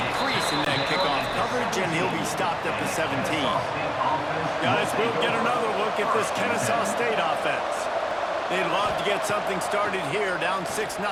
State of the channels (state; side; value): identical; both; correlation 1.00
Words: crease in that kickoff coverage, and he'll be stopped at the 17. Guys, we'll get another look at this Kennesaw State offense. They'd love to get something started here, down 6-0.